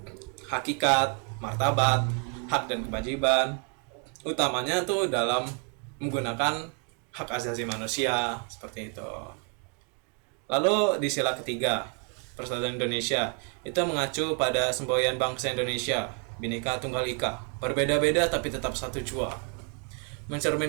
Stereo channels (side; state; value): left; quieter; 37.5 dB